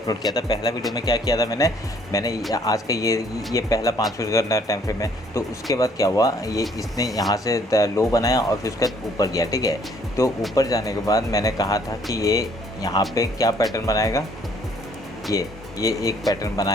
किया था। पहला वीडियो में क्या किया था मैंने आज का ये पहला 5 मिनट का टाइम फ्रेम है। तो उसके बाद क्या हुआ, ये इसने यहाँ से लो बनाया और फिर उसके बाद ऊपर गया, ठीक है। तो ऊपर जाने के बाद मैंने कहा था कि ये यहाँ पे क्या पैटर्न बनाएगा, ये एक पैटर्न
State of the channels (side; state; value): both; normal; correlation 0.63